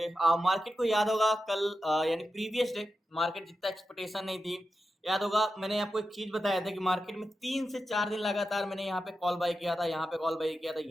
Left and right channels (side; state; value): both; normal; correlation 0.90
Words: मार्केट को याद होगा कल यानी प्रीवियस डे मार्केट जितना एक्सपेक्टेशन नहीं थी। याद होगा मैंने आपको एक चीज बताया था कि मार्केट में 3 से 4 दिन लगातार मैंने यहाँ पे कॉल बाय किया था, यहाँ पे कॉल बाय किया था,